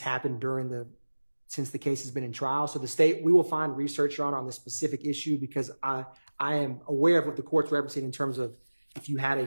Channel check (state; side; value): inverted; both; correlation -1.00